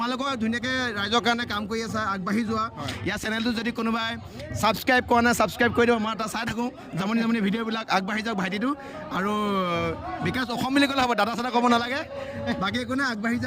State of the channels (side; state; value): both; identical; correlation 1.00